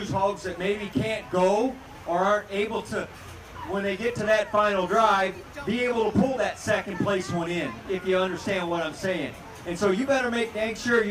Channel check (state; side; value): identical; both; correlation 1.00